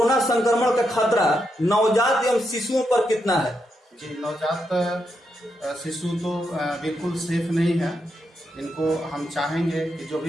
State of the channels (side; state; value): both; normal; correlation 0.82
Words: संक्रमण का खतरा नवजात एवं शिशुओं पर कितना है? जी, नवजात शिशु तो बिल्कुल सेफ नहीं है। इनको हम चाहेंगे कि जो